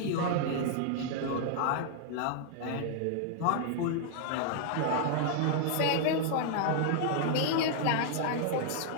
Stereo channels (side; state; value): both; different; correlation -0.01